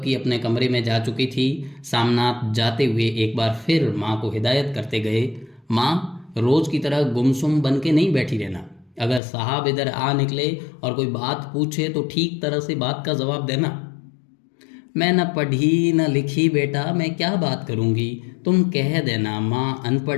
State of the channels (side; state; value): right; drops out; at 9.2 s